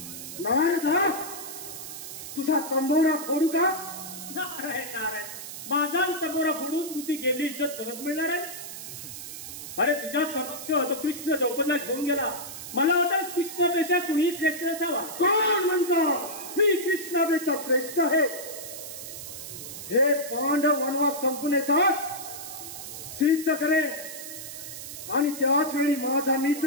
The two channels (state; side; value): noise; right; hiss, 10 dB below the sound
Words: नारायण, तुझा तंबोरा फोडू का? नारायण नारायण, माझा तंबोरा फोडून तुझी गेली इज्जत परत मिळणार आहे? अरे तुझ्या समक्ष तो कृष्ण द्रौपदीला घेऊन गेला. मला वाटतं कृष्णापेक्षा कुणी श्रेष्ठ असावा. कोण म्हणतो मी कृष्णापेक्षा श्रेष्ठ आहे? हे पांडव वनवास संपून येतात सिद्ध करे आणि त्याच वेळी माझा